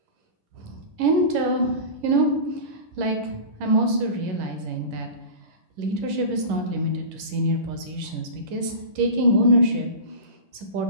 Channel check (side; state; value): left; late; 11 ms